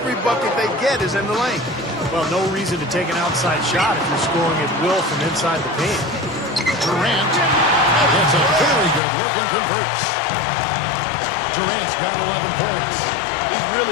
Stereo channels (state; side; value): drops out; right; at 9.0 s